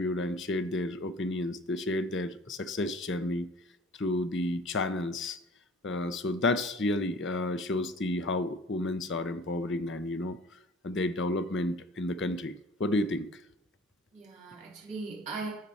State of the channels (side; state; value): both; normal; correlation 0.47